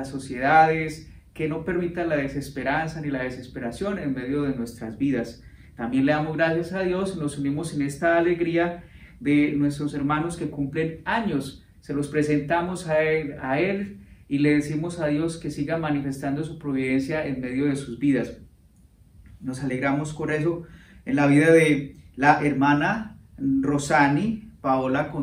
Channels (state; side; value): identical; both; correlation 1.00